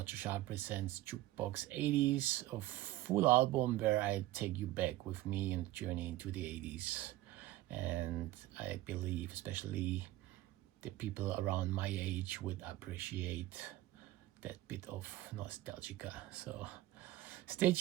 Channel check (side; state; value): left; quieter; 16.2 dB